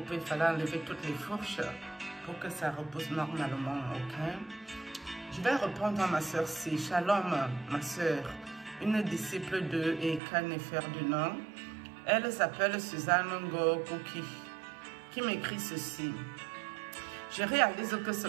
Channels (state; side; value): drops out; left; at 10.2 s